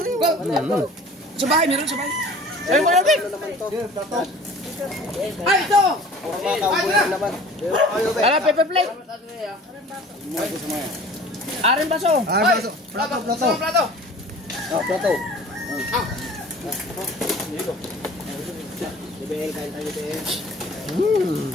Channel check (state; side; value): normal; both; correlation 0.45